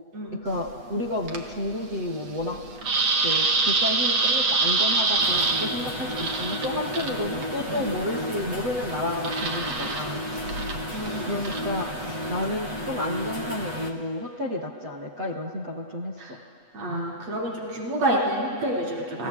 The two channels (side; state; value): left; late; 8.2 ms